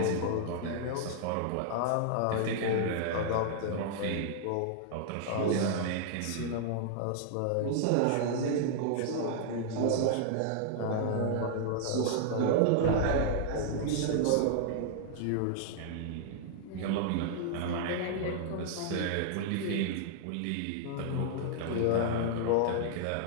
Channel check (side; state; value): both; different; correlation -0.01